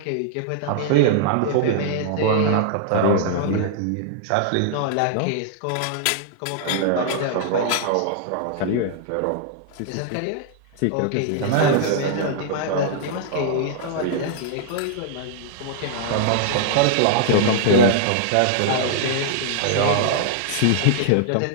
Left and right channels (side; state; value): both; different; correlation -0.01